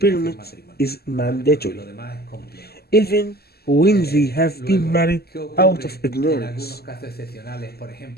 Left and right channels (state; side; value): late; right; 0.46 ms